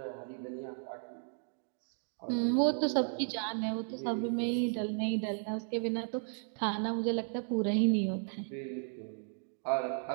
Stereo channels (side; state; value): left; silent; 55 dB below the other